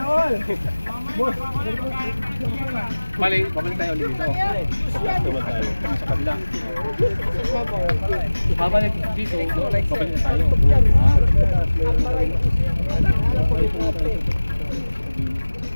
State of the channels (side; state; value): both; inverted; correlation -1.00